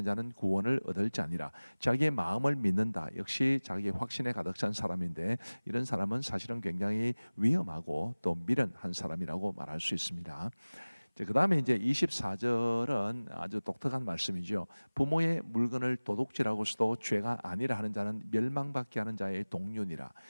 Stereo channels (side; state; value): both; inverted; correlation -1.00